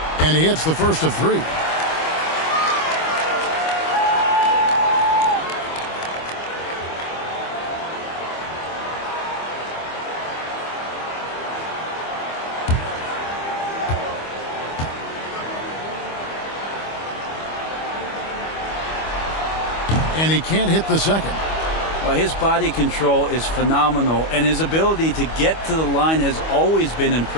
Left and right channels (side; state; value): right; late; 25 ms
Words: And he hits the first of 3. And he can't hit the second. Well, his body control is phenomenal, and his ability to get to the line has always been